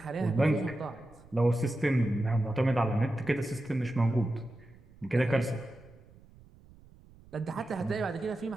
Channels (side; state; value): right; noise; rumble, 24 dB below the sound